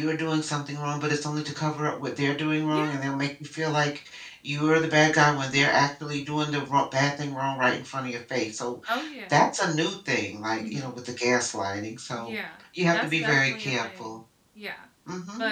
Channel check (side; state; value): both; identical; correlation 1.00